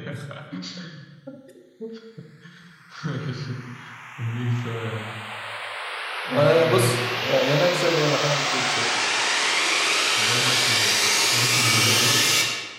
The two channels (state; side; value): identical; both; correlation 1.00